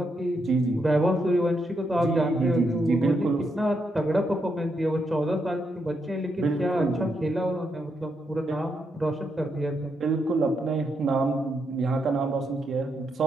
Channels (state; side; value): normal; both; correlation 0.80